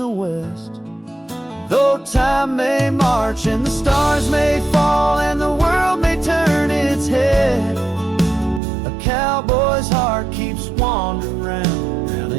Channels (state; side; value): drops out; left; at 8.6 s